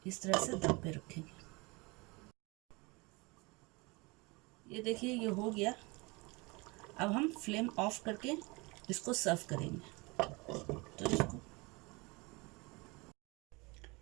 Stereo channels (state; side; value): quieter; left; 26.2 dB